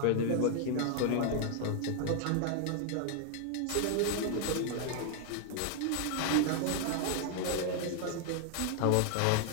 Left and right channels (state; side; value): different; both; correlation 0.00